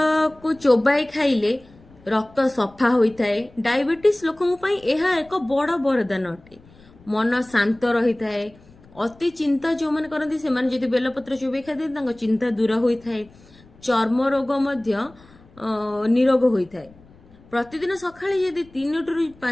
को चोबाई खाइले रक्त सफा होता है। डायबिटीज लोकों पई यह एक बड़ वरदान अटे। मन शांत रही थाए। अति चिंता जो मैंने करती से माने जदि बेलपत्र चोबाई खाते चिंता दूर होता है। चर्म रोग मध्य निरोग होता है। प्रतिदिन सकाळे यदि 3 टू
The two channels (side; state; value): left; noise; rumble, 26 dB below the sound